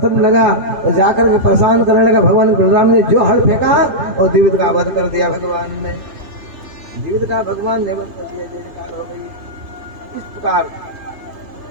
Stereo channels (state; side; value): late; left; 2.9 ms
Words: लगा और जाकर के परेशान करने लगा। भगवान बलराम ने जो हड़ फेंका और द्विविद का वध कर दिया। भगवान ने द्विविद का भगवान ने वध कर दिया। जयकार हो गई। इस प्रकार